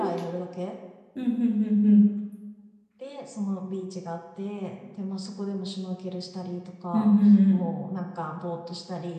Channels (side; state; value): both; identical; correlation 1.00